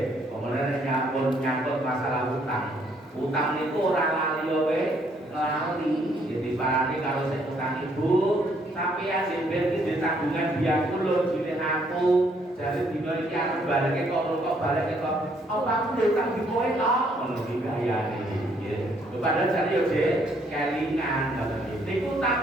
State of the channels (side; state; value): both; normal; correlation 0.68